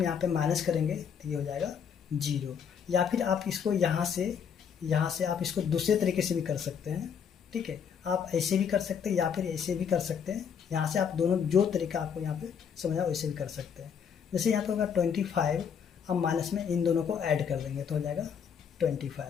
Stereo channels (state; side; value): quieter; right; 7.4 dB